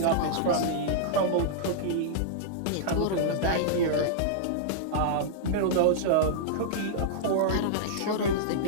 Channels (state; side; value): different; both; correlation -0.02